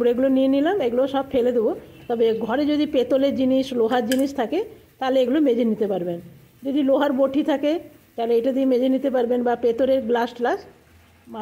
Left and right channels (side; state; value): both; identical; correlation 1.00